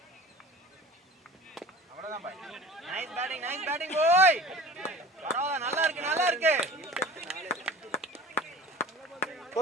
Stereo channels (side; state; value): both; normal; correlation 0.40